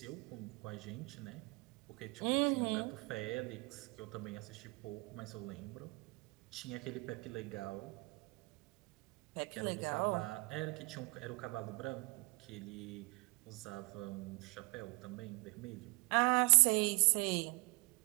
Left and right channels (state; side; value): quieter; left; 27.6 dB